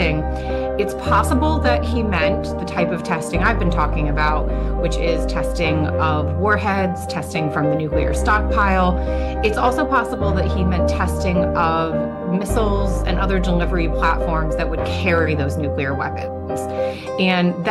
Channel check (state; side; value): identical; both; correlation 1.00